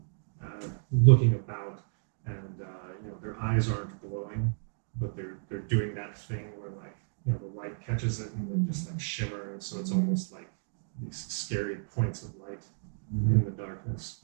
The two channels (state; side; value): silent; left; digital silence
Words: of looking about, and their eyes aren't glowing, but they're doing that thing where like the light catches it and they just like shimmer, and so it's almost like these scary points of light in the darkness.